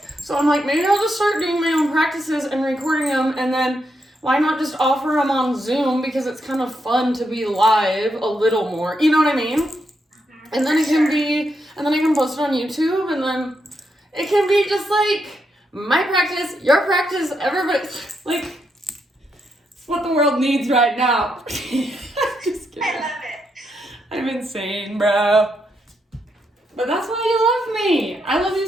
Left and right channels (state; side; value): normal; both; correlation 0.81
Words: So I'm like, maybe I'll just start doing my own practices and recording them, and then why not just offer them on Zoom, because it's kind of fun to be live a little more, you know what I mean? And then I can post it on YouTube, and then it can be just like my practice, your practice, everybody's like, it's what the world needs right now. Just kidding. I love it. I'm insane, bro. But that's why you love me. I love you